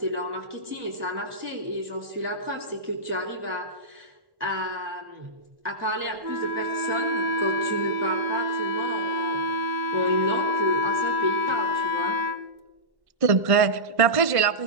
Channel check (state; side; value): late; left; 1.1 ms